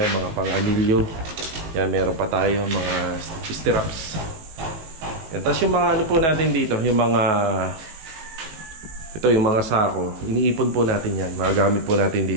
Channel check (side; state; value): left; late; 19 ms